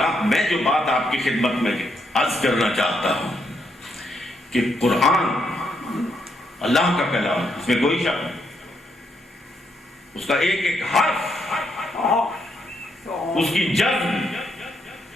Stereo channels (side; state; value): both; normal; correlation 0.77